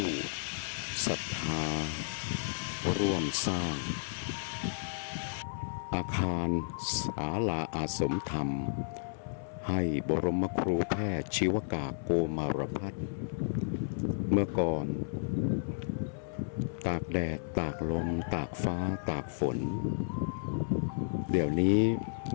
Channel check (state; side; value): silent; right; 56 dB below the other